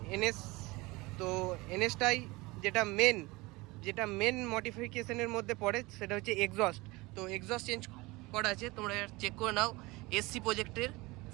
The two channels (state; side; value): quieter; left; 22.7 dB